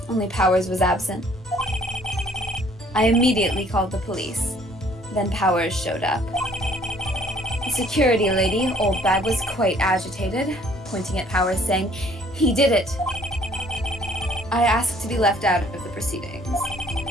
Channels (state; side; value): normal; both; correlation 0.59